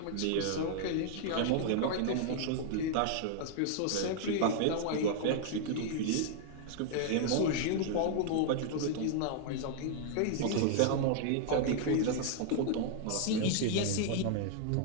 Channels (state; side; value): different; both; correlation -0.01